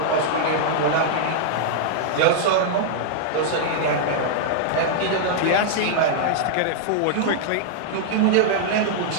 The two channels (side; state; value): both; different; correlation -0.01